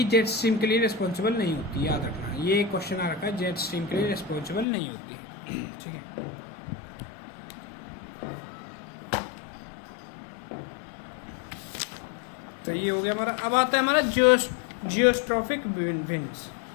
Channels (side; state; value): right; drops out; at 4.7 s